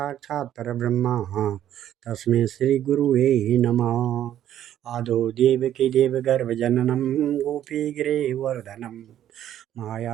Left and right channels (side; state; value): left; quieter; 11.3 dB